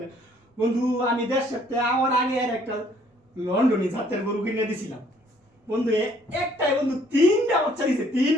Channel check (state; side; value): normal; both; correlation 0.62